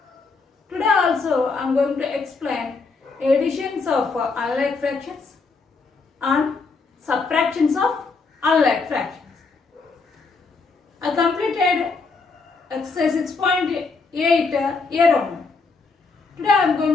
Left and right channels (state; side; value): quieter; right; 4.3 dB